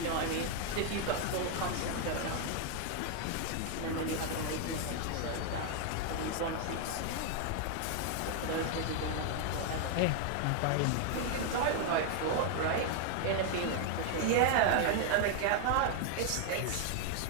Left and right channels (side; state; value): both; different; correlation 0.00